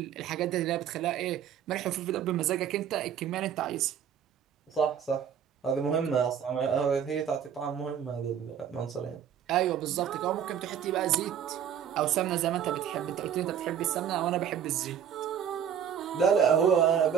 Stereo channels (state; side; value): quieter; left; 8.7 dB